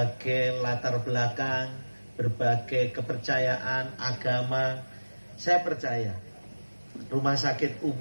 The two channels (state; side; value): inverted; both; correlation -1.00